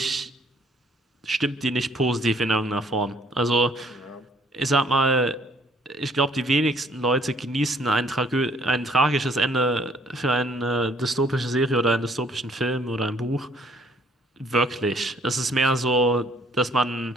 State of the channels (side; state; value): both; normal; correlation 0.62